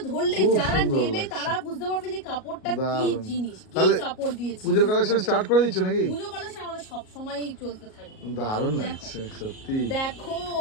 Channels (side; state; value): right; late; 38 ms